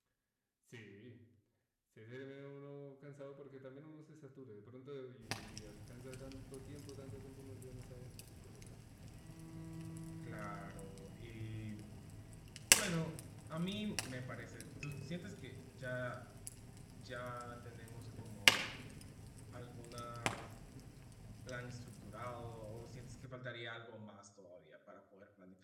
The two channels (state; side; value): identical; both; correlation 1.00